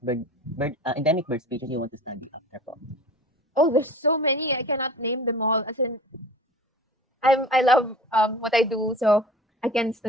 endemic bird species you want to study after po? Oh, there's so many. I cannot name them all. As in, I love what I do, so I can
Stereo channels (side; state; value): both; normal; correlation 0.39